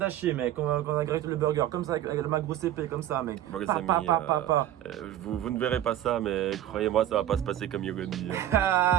hachée, mec, quand on a grillé le burger, comme ça, avec ma grosse épée, comme ça, mec. Vous ne verrez pas ça, mais croyez-moi, ça va pas se passer comme Yogoni.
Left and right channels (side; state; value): left; quieter; 12.4 dB